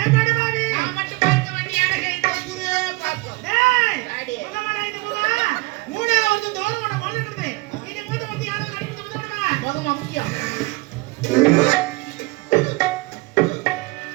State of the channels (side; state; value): left; quieter; 23.3 dB